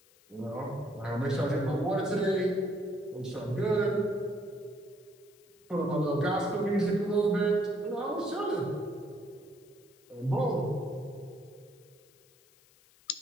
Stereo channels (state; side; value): noise; left; hiss, 29 dB below the sound